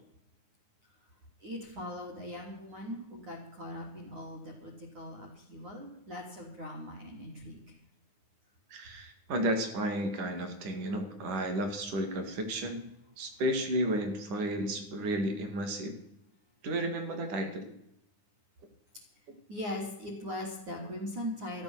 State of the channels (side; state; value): left; late; 9.8 ms